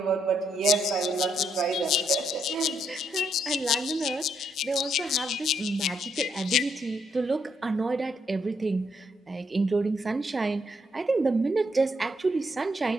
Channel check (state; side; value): normal; both; correlation 0.76